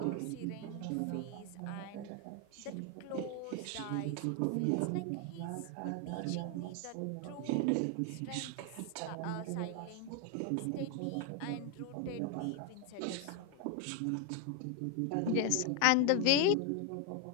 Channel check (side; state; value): both; different; correlation 0.01